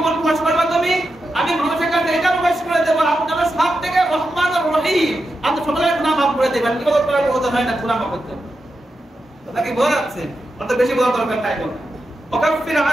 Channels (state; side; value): normal; both; correlation 0.88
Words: প্রকাশ করবা তুমি? আমি মানুষের কাছে এটা প্রকাশ করে দেবো, আপনারা সব থেকে রহমান আর রহিম, আপনি সকলের গুনাহ মাফ করে দেবেন। কি বলতে পারবো? ওটা হয় না, গুনাহ মাফ করতে কথা কি বোঝা যাচ্ছে? অত বেশি বোঝা দরকার নাই। বল ওয়াকাফির